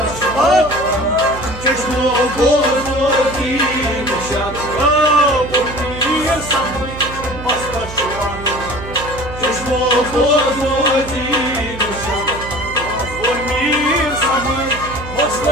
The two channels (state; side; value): noise; right; hum, 12 dB below the sound